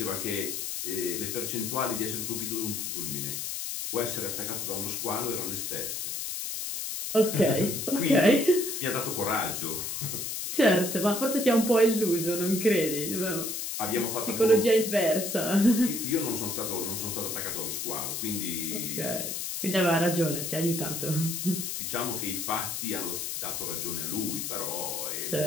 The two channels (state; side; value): noise; left; hiss, 4 dB below the sound